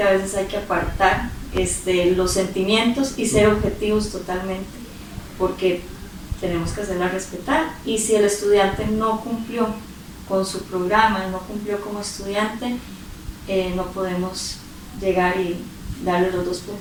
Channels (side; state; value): both; identical; correlation 1.00